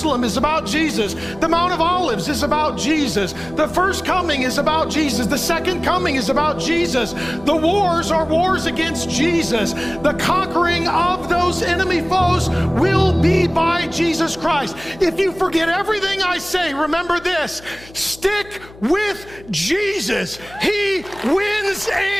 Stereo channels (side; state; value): left; noise; hum, 21 dB below the sound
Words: is about Jesus. The Mount of Olives is about Jesus. The first coming is about Jesus. The second coming is about Jesus. The wars are wars against Jesus. The conquering of those enemy foes will be by Jesus Christ. If you forget everything I say, remember this: stick with Jesus. He wins